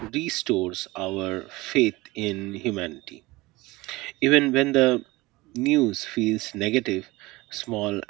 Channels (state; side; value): quieter; left; 21.1 dB